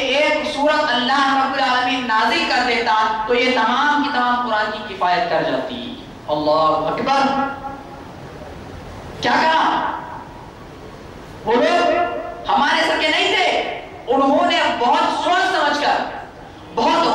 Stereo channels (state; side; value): identical; both; correlation 1.00